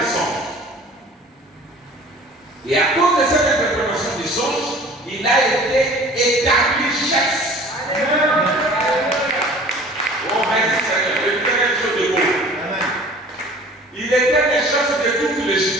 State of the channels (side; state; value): both; normal; correlation 0.46